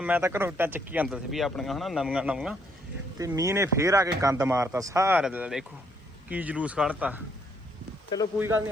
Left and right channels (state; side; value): normal; both; correlation 0.70